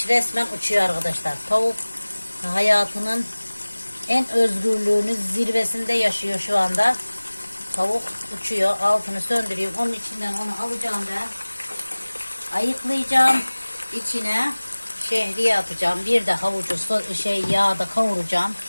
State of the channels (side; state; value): both; inverted; correlation -1.00